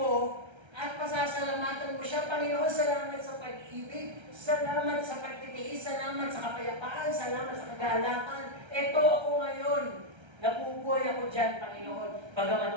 at pasasalamatan mo siya. Panginoon, salamat sa pag-ibig, salamat sa pagtitiis, salamat sa kapayapaan, salamat sa kagalakan. Ito ako ngayon. Nabubuhay ako dyan, Panginoon. Bagamat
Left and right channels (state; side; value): late; left; 1.3 ms